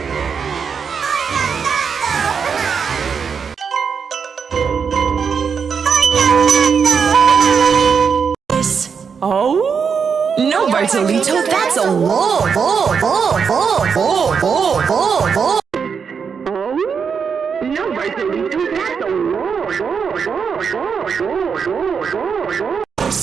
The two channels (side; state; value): left; quieter; 6.3 dB